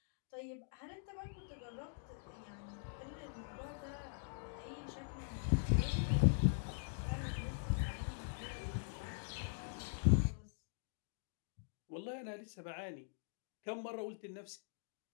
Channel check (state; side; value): silent; right; digital silence